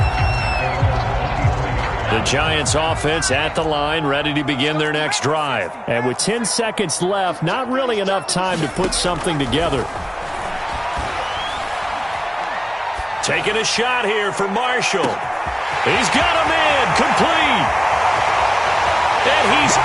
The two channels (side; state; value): both; identical; correlation 1.00